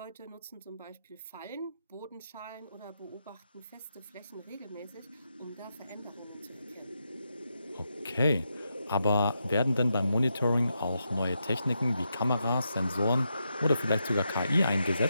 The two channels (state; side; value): inverted; both; correlation -0.84